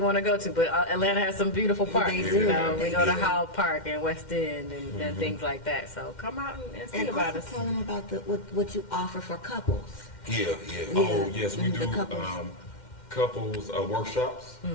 want to go to, but Atlanta has some beautiful parks. They You do. know, we They go to do. Howell Park and West End and things like that. So come out and see And about also us. tell them about what you offer for couples. Yeah. Oh, yes, we The do couples. couples workshops.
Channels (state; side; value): late; right; 2.1 ms